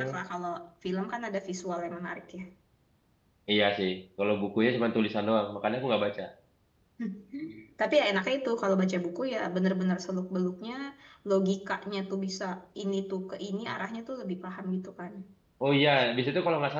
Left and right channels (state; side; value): identical; both; correlation 1.00